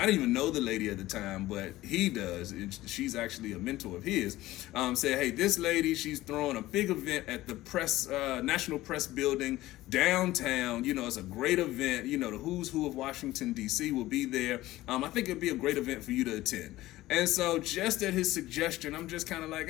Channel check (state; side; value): quieter; right; 16.7 dB